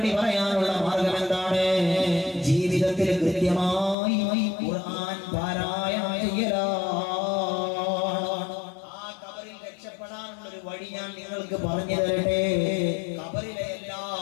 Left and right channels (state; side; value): drops out; right; at 4.0 s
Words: പറയാനുള്ള മാർഗം എന്താണ്? ജീവിതത്തിൽ കൃത്യമായി ഖുർആൻ പാരായണം ചെയ്യലാണ്. ആ ഖബറിൽ രക്ഷപ്പെടാനുള്ള ഒരു വഴി ഞാൻ നിങ്ങൾക്ക് പറഞ്ഞു തരട്ടെ. ഖബറിലെ എല്ലാ